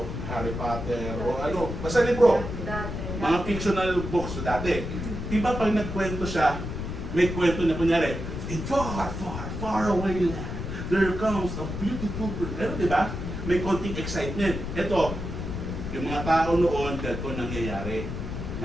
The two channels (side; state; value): left; noise; rumble, 5 dB below the sound